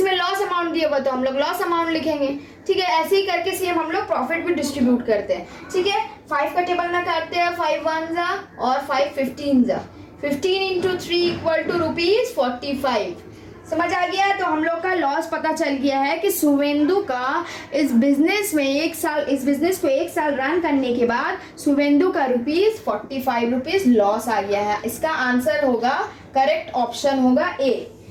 लॉस अमाउंट दिया हुआ तो हम लोग लॉस अमाउंट लिखेंगे। ठीक है, ऐसे ही करके सेम हम लोग प्रॉफिट भी डिस्ट्रीब्यूट करते हैं। ठीक है, 5 का टेबल में करते हैं, 5 1 जा और 5 15 जा, 15 इंटू 3 इक्वल टू ₹45। समझ आ गया? तो हम लोग का लॉस पता चल गया है कि सुवेंदु का इस बिजनेस में 1 साल, इस बिजनेस को 1 साल रन करने के बाद सुवेंदु का ₹45 लॉस आ गया है। इसका आंसर होगा, करेक्ट ऑप्शन होगा ए।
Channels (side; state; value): both; identical; correlation 1.00